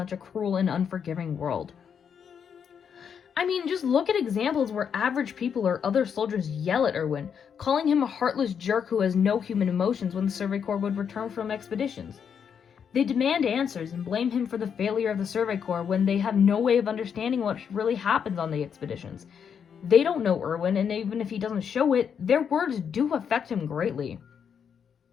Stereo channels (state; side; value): quieter; right; 7.4 dB